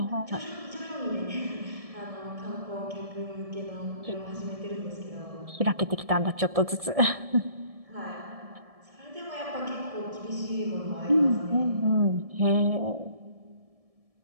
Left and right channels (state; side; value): late; left; 1.7 ms